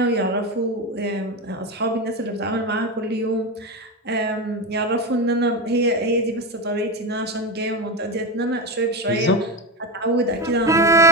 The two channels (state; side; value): normal; both; correlation 0.18